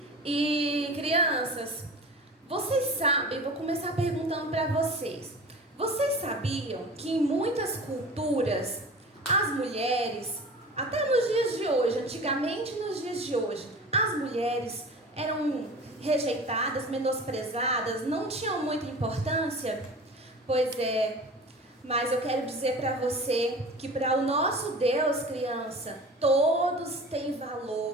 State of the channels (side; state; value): both; normal; correlation 0.37